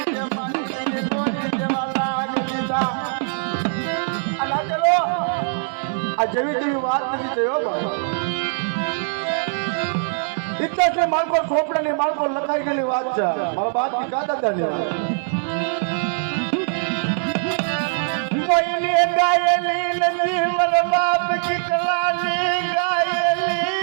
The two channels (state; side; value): silent; left; 61 dB below the other